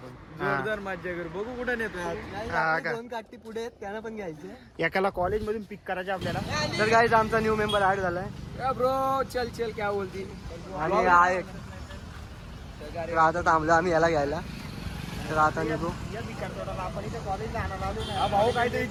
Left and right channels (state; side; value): identical; both; correlation 1.00